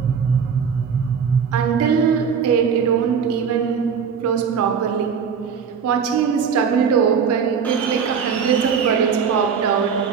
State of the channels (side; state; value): left; quieter; 6.7 dB